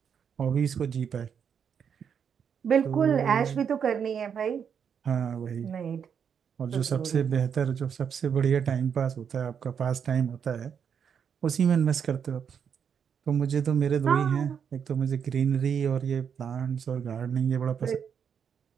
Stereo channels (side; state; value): left; quieter; 7.4 dB